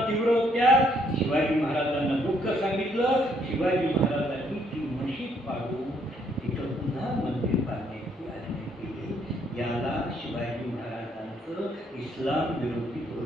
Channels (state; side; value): normal; both; correlation 0.69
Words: तीव्र होत्या. शिवाजी महाराजांना दुःख सांगितलं. शिवाजी महाराजांनी ती मशीद पाडून तिथं पुन्हा मंदिर बांधण्याची आज्ञा केली. याला शिवाजी महाराजांचं इस्लाम विरोधी